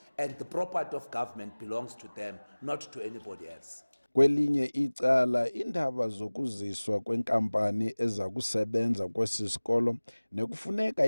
and the property of government belongs to them, not to anybody else. Kwelinye icala iindaba zokuziswa kwenkampani eza kusebenza kwesi sikolo nekufuneka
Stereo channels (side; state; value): both; inverted; correlation -1.00